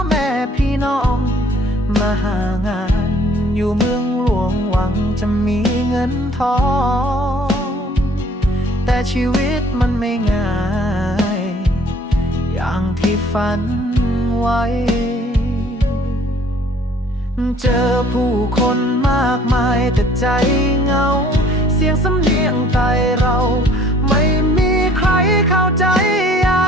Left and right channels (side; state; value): both; normal; correlation 0.56